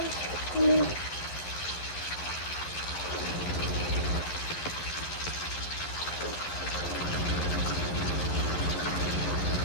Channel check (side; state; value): right; late; 11 ms